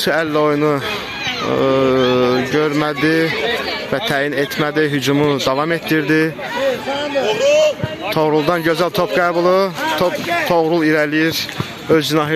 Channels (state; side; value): identical; both; correlation 1.00